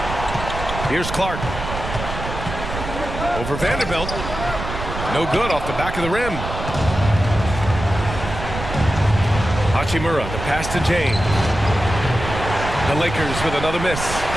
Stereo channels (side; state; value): right; noise; rumble, 7 dB below the sound